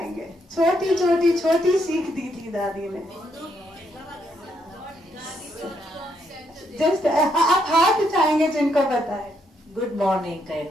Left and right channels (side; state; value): both; normal; correlation 0.75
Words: छोटी छोटी छोटी सीख दी थी दादी ने। जस्ट आप हाथ उठाएंगे जिनको पता है। गुड मॉर्निंग